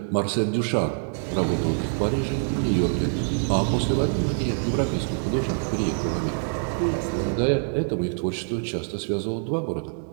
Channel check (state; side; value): silent; left; digital silence